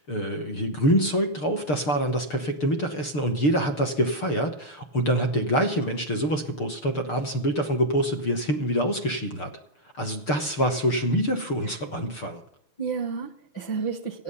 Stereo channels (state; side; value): late; right; 6.7 ms